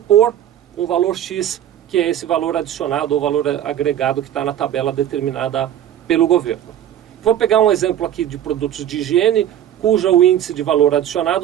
um valor X, que é esse valor adicionado ou valor agregado que está na tabela determinada pelo governo. Vou pegar um exemplo aqui de produtos de higiene, cujo o índice de valor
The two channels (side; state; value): left; quieter; 10.9 dB